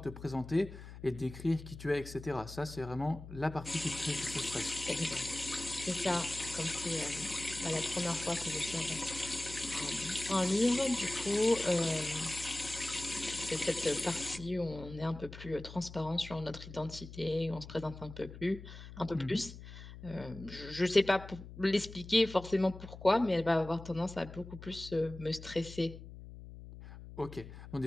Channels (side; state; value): left; noise; hum, 14 dB below the sound